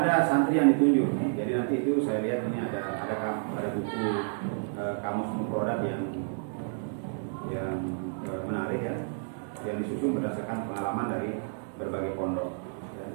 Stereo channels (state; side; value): silent; left; digital silence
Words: santri yang ditunjuk. Jadi nanti nanti itu saya lihat ini ada buku kamus mufradat yang menarik ya, yang disusun berdasarkan pengalaman dari berbagai pondok.